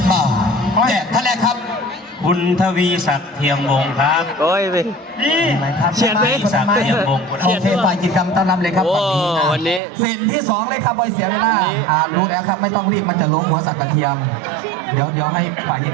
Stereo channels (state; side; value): drops out; left; at 9.8 s